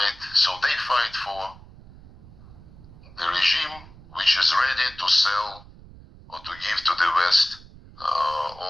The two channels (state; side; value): noise; right; rumble, 20 dB below the sound